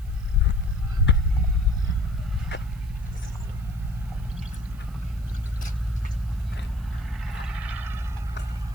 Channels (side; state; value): right; noise; hiss, 27 dB below the sound